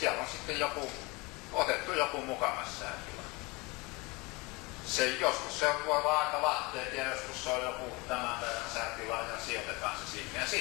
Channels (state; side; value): quieter; right; 25.3 dB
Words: on sitten otettu joku mukamas säätila. Joskus se voi olla aika lahteet ja joskus se on joku tämän päivän säätila ja sijoitetaan se sinne. Ja